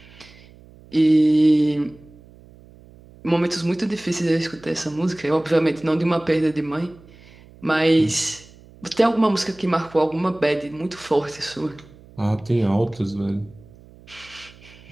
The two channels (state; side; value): noise; right; hum, 24 dB below the sound